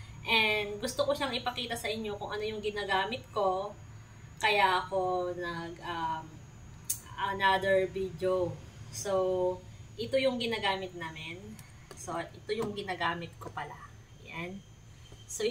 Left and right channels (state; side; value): identical; both; correlation 1.00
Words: And gusto ko siyang ipakita sa inyo kung ano yung ginagamit ko, kaya ako another video. So, ito yung ginagamit namin. So, ito yung ginagamit ko pala. Yan. So,